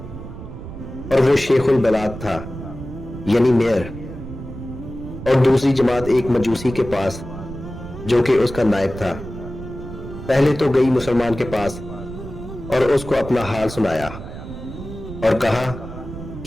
اور وہ شیخ البلاد تھا یعنی میئر، اور دوسری جماعت ایک مجوسی کے پاس جو کہ اس کا نائب تھا. پہلے تو گئی مسلمان کے پاس اور اس کو اپنا حال سنایا اور کہا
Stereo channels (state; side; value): noise; right; rumble, 11 dB below the sound